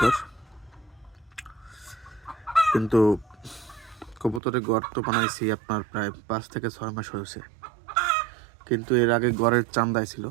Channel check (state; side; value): drops out; left; at 4.4 s